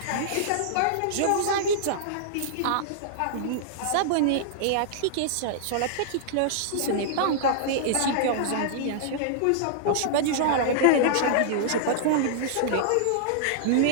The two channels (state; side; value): different; both; correlation -0.02